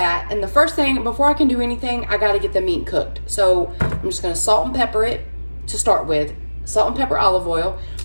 and the first thing, before I can do anything, I gotta get the meat cooked. So I'm just gonna salt and pepper it to start with. Salt and pepper, olive oil.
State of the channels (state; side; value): inverted; both; correlation -1.00